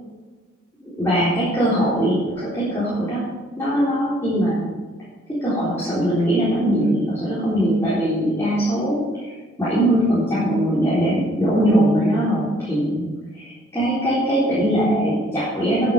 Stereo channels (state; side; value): normal; both; correlation 0.62